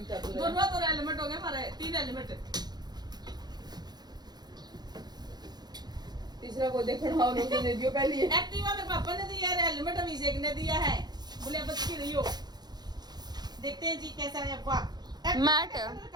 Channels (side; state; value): left; late; 0.20 ms